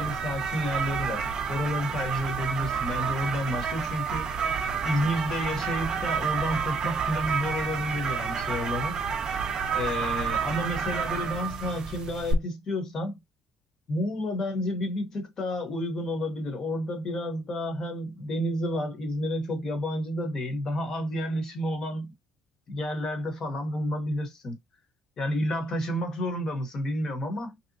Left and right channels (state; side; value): normal; both; correlation 0.69